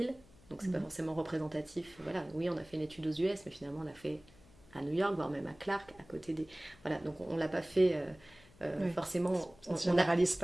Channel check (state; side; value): noise; left; hum, 25 dB below the sound